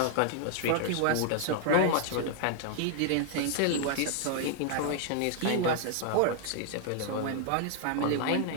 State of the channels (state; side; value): different; both; correlation 0.00